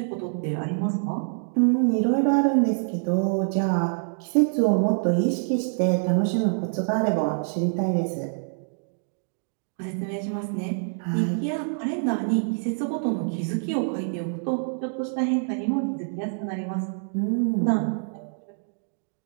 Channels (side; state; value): left; silent; digital silence